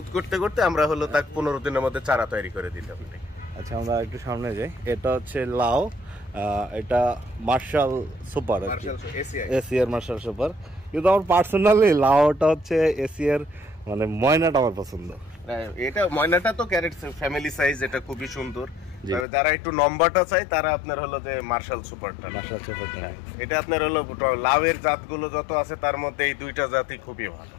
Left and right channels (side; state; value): right; drops out; at 19.2 s